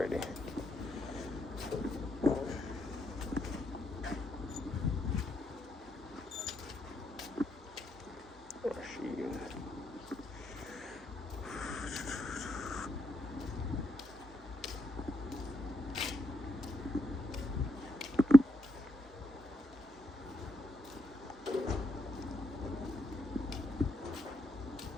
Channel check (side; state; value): both; normal; correlation 0.79